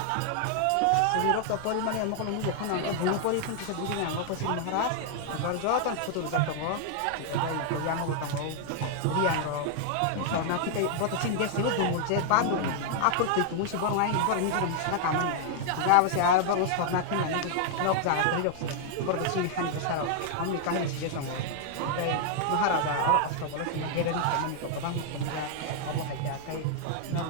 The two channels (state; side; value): different; both; correlation -0.01